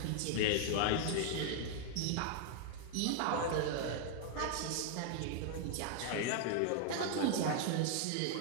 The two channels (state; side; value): different; both; correlation 0.00